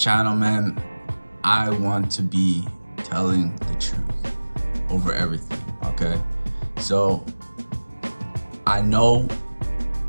man, I want to be telling the truth over everything, okay? So, I know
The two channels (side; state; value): both; inverted; correlation -1.00